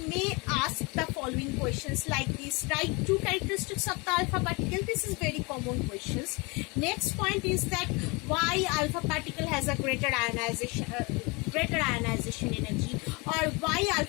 may ask the following questions like this. Write two characteristics of the alpha particle. This is very common questions. Next point is that why alpha particle has a greater ionization energy, or why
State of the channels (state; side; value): quieter; right; 27.8 dB